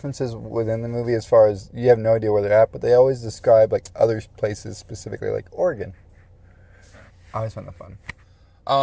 within the movie, as far as you have no idea where they're at, but they always describe like other places, specifically like Oregon. I always find that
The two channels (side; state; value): both; identical; correlation 1.00